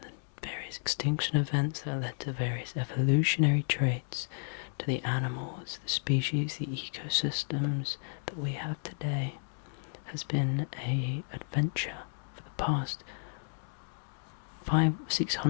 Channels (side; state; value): right; silent; digital silence